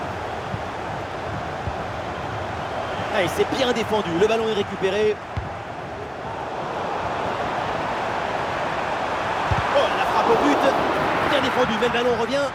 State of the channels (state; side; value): identical; both; correlation 1.00